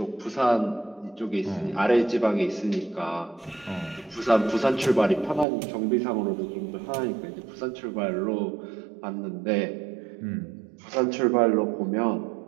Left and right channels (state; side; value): drops out; left; at 5.5 s